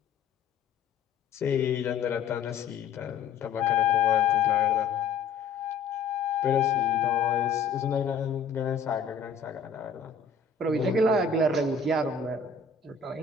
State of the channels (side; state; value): right; quieter; 5.5 dB